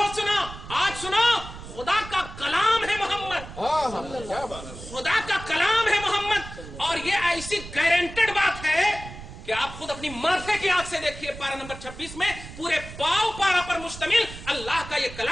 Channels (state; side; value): noise; right; rumble, 13 dB below the sound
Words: سنا. آج سنو، خدا کا کلام ہے محمد. خدا کا کلام ہے محمد. اور یہ ایسی گارنٹیڈ بات ہے کہ آپ خود اپنی معرفے کی آنکھ سے دیکھیے. پارہ نمبر 26 میں پورے پاؤ پارہ پر مشتمل اللہ کا یہ